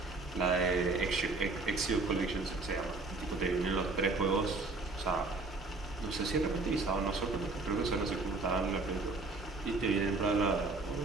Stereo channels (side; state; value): left; quieter; 3.5 dB